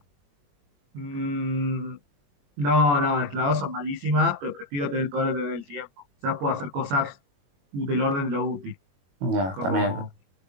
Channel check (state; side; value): late; left; 22 ms